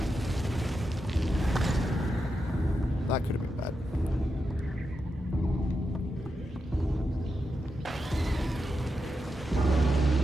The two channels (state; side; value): normal; both; correlation 0.87